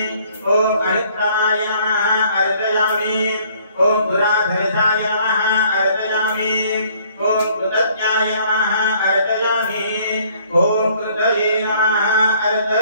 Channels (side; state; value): both; inverted; correlation -0.60